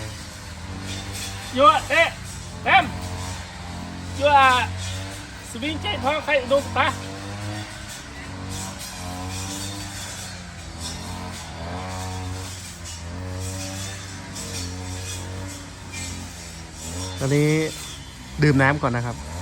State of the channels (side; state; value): both; identical; correlation 1.00